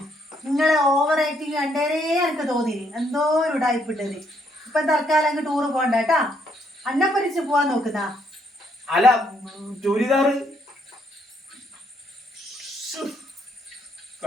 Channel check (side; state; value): both; normal; correlation 0.71